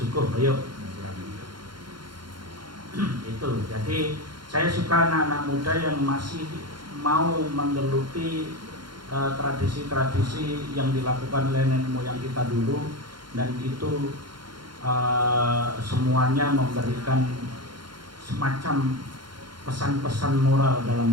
ayo. Itu, jadi saya suka anak-anak muda yang masih mau menggeluti tradisi-tradisi yang dilakukan oleh nenek moyang kita dulu, dan itu semuanya memberikan semacam pesan-pesan moral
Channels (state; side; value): late; left; 0.72 ms